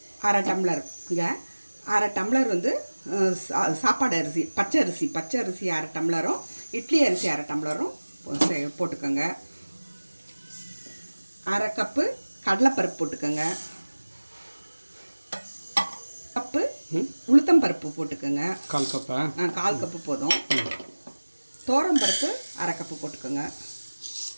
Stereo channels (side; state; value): both; inverted; correlation -1.00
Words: அரை டம்ளர் சாப்பாடு அரிசி பச்சை அரிசி அரை டம்ளரும் இட்லி அரிசி அரை டம்ளரும் போட்டுக்கோங்க. அரை கப்பு கடலைப்பருப்பு போட்டுக்கோங்க. கப்பு உளுத்தம் பருப்பு போட்டுக்கோங்க. கால் கப்பு போதும். தோரம் பருப்பு அரை கப்பு போட்டுக்கோங்க.